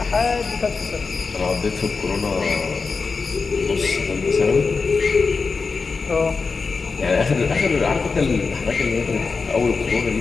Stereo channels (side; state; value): right; quieter; 4.6 dB